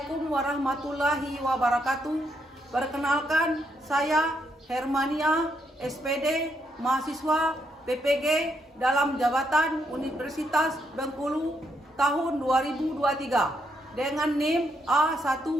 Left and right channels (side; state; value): both; normal; correlation 0.77